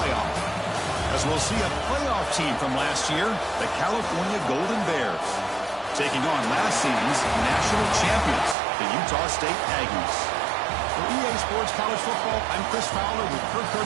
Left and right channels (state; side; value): drops out; left; at 8.6 s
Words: As we'll see a playoff team from last year, the California Golden Bears, taking on last season's national champions, the Utah State Aggies. For EA Sports College Football, I'm Chris Fowler with Kirk